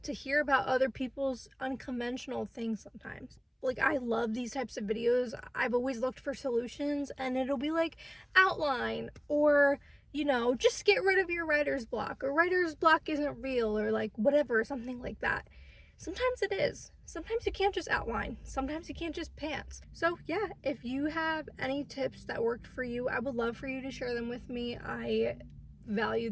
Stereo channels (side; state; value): both; identical; correlation 1.00